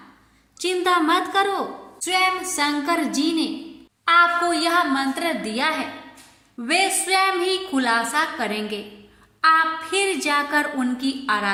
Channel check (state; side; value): identical; both; correlation 1.00